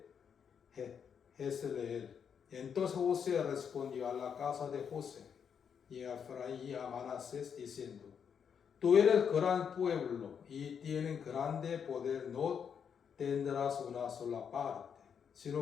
Jezreel. Entonces José respondió a la casa de José y a Efraín y a Manasés diciendo: Tú eres gran pueblo y tienes grande poder, no tendrás una sola parte,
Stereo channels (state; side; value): quieter; right; 7.3 dB